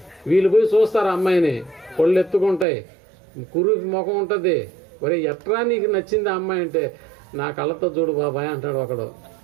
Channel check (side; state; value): left; drops out; at 2.7 s